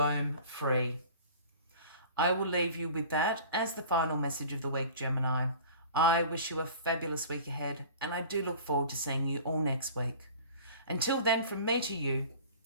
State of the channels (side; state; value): both; inverted; correlation -0.43